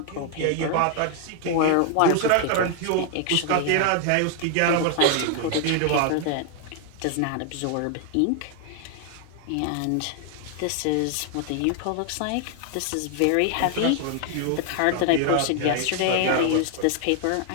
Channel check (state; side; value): different; both; correlation 0.00